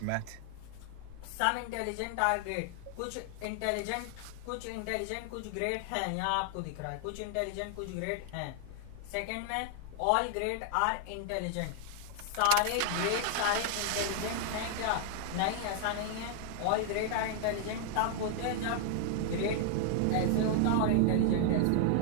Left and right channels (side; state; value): both; different; correlation 0.00